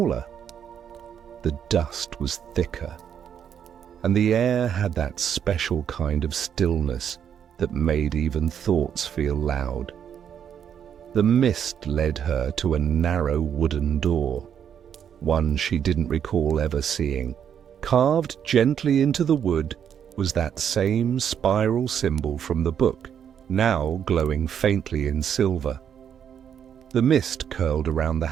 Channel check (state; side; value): quieter; left; 8.5 dB